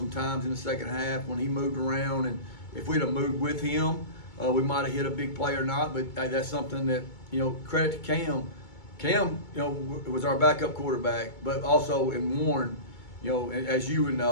in the second half when he moved around, and if we'd have moved with him, we might have hit a big play or not. But that's something that credit to Cam. Cam, was our backup quarterback, but also in Warren, as you would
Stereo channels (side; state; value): right; late; 2.2 ms